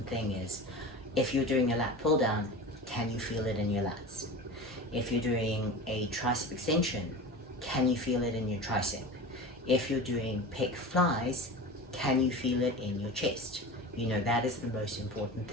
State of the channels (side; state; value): both; normal; correlation 0.32